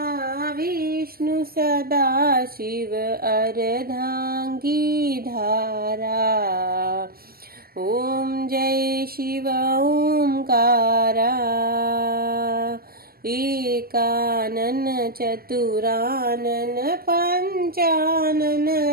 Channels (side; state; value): left; late; 0.43 ms